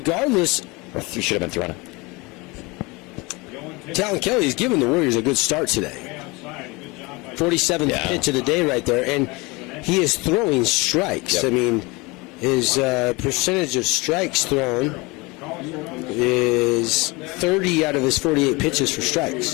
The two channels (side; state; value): right; quieter; 25.0 dB